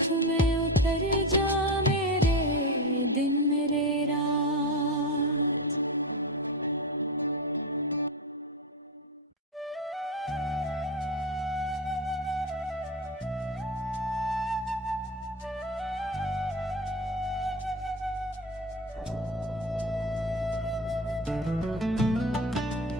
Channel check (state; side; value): normal; both; correlation 0.21